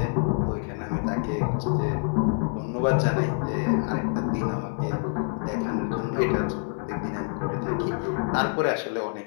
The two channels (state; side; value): silent; right; 56 dB below the other